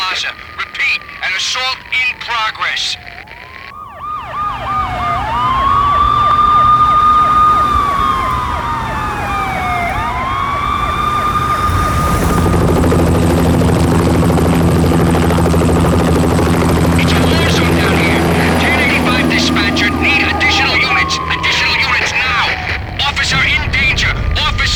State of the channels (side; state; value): both; identical; correlation 1.00